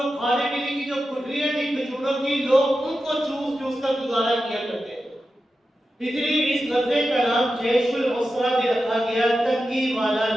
کھانے پینے کی جو گٹھلیاں تھی کھجوروں کی، لوگ ان کو چوس چوس کر گزارا کیا کرتے تھے، اس لیے اس غزوے کا نام جیش العسرہ بھی رکھا گیا، تنگی والا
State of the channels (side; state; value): both; normal; correlation 0.91